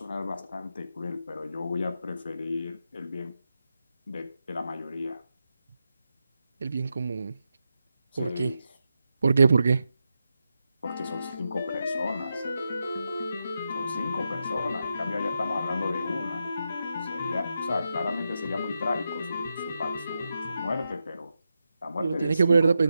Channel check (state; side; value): inverted; both; correlation -0.87